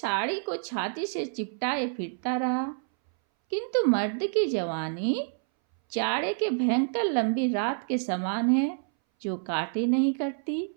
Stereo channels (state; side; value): silent; left; 59 dB below the other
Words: को छाती से चिपटाए फिरता रहा। किंतु मर्द की जवानी जाड़े के भयंकर लंबी रात के समान है, जो काटे नहीं करती।